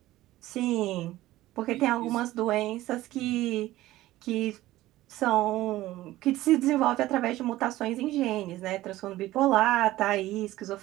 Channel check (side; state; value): left; quieter; 16.2 dB